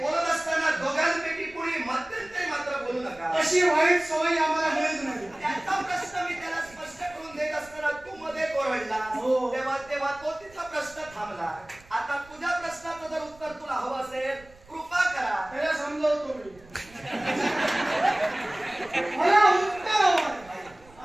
असताना दोघांपैकी कुणी मध्यंतरी मात्र बोलू नका. अशी वाईट सवय आम्हाला मिळत नाही. त्याचा प्रश्न मी त्याला स्पष्ट करून देत असताना तू मध्ये कोरडला, तेव्हा तो तिचा प्रश्न थांबला. आता तुझ्या प्रश्नाचं जर उत्तर तुला हवं असेल कृपा करा. त्याला समजावतो मी. मला उत्तर हवं.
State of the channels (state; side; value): noise; right; rumble, 24 dB below the sound